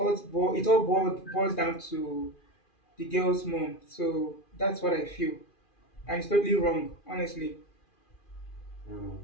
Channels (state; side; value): late; right; 2.4 ms